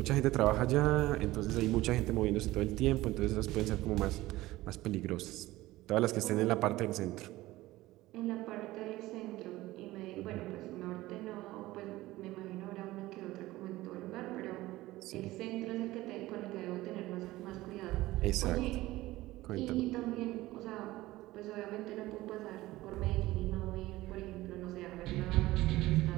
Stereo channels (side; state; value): left; quieter; 17.6 dB